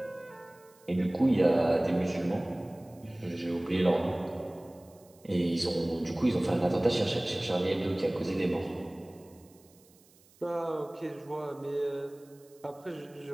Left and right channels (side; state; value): right; noise; hiss, 29 dB below the sound